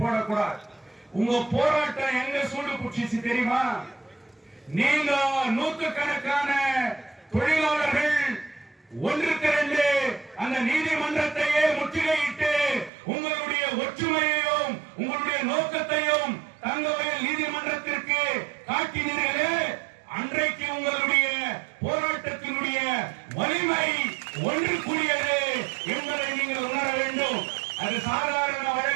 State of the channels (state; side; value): drops out; left; at 12.9 s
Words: உங்க போராட்டம் எங்க சூடு புடிச்சு தெரியுமா? நீங்க நூற்றுக்கணக்கான தொழிலாளர்கள் ஒன்றுக்கு 2 அந்த நீதிமன்றத்தையே முற்றுகையிட்டு உங்களுடைய ஒற்றுமையையும் உங்களுடைய நோக்கத்தையும் தங்கவயல் நீதிமன்றத்திற்கு காட்டினீர்களே, அன்றைக்கு உங்களுடைய போராட்டத்தினுடைய வலிமை ஒன்று கூடியது என்பதை நீங்கள் உணர வேண்டும். அது சாதாரண